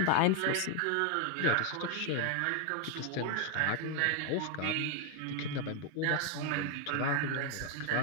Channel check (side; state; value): both; different; correlation 0.01